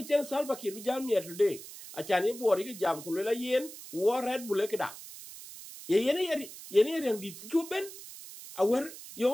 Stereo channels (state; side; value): noise; right; hiss, 14 dB below the sound